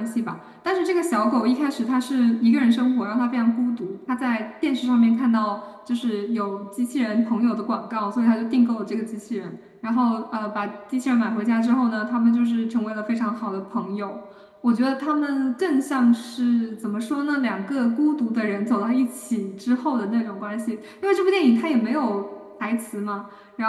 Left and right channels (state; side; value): identical; both; correlation 1.00